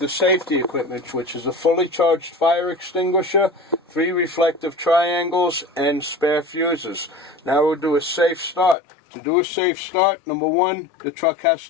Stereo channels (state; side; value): drops out; right; at 8.8 s